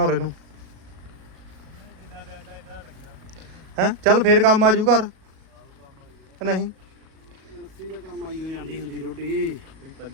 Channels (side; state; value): left; late; 37 ms